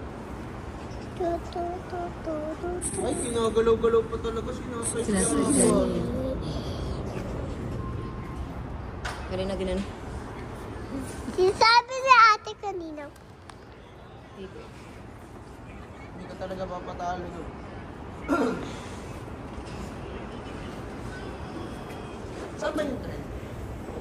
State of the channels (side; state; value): both; identical; correlation 1.00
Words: Ay, kinagalaw-galaw pa talaga sinasay. Galing na ginan. Sinasabi ni ate kanina. Hindi ka talaga papatalo doon. Saan ba yung tren?